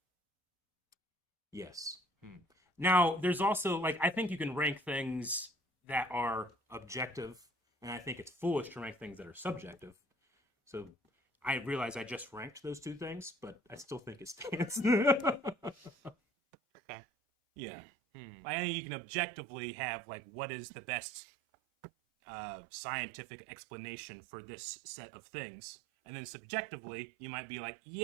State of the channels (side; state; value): left; drops out; at 16.2 s